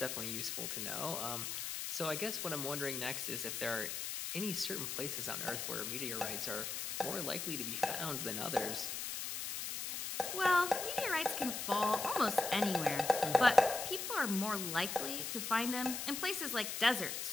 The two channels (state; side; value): noise; left; hiss, 4 dB below the sound